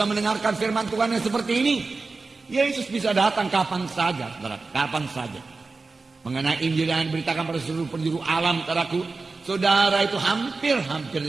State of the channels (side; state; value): left; quieter; 3.9 dB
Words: mendengarkan firman Tuhan yang seperti ini. Yesus bisa datang kapan saja, saudara, kapan saja. Mengenai Injil yang diberitakan pada seluruh penjuru alam, saudaraku, saudara itu hampir